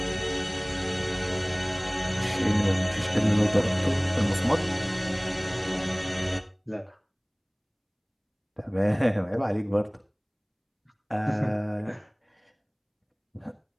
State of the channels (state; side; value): identical; both; correlation 1.00